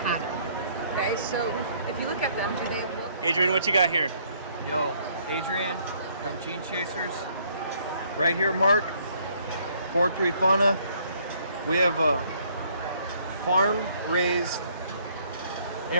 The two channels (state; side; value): inverted; both; correlation -0.64